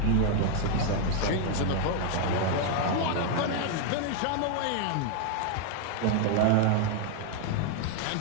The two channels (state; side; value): different; both; correlation 0.00